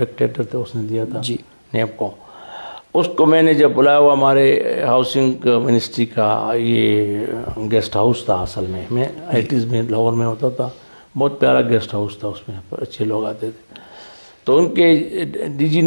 تھے, اس نے دیا تھا جی نیب کو. اس کو میں نے جب بلایا, ہوا ہمارے ہاؤسنگ منسٹری کا یہ گیسٹ ہاؤس تھا اصل میں 80s میں لاہور میں ہوتا تھا, بہت پیارا گیسٹ ہاؤس تھا, اس میں اچھے لوگ آتے تھے. تو ان کے ڈی جی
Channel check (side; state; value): both; inverted; correlation -1.00